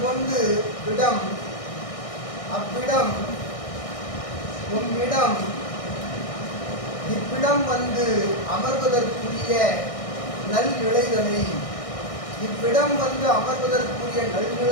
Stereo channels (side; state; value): right; late; 1.6 ms